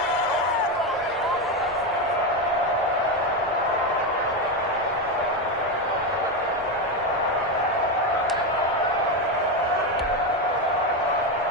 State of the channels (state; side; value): normal; both; correlation 0.12